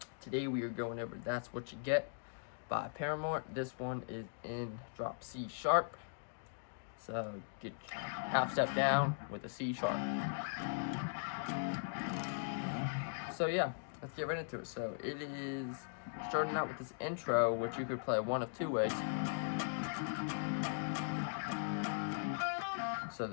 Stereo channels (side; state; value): right; silent; digital silence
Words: Today we are going over That's What You Get by Paramore. This one is in drop C sharp. So get half step down with a C sharp. So yeah, let's get right into it. So it is starting out with this intro, which you could play one of two ways. So